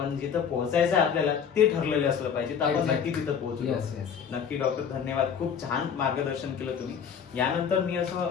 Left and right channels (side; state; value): right; quieter; 7.3 dB